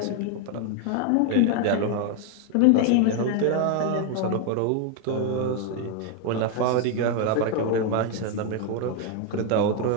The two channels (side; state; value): both; different; correlation 0.01